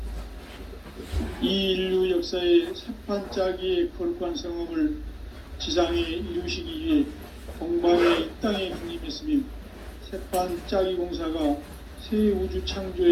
이 인류 역사의 새판 짜기의 거룩한 성험을 지상에 이루시기 위해 동방의 이 땅에 강림했으며 새판 짜기 공사가 새 우주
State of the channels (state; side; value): identical; both; correlation 1.00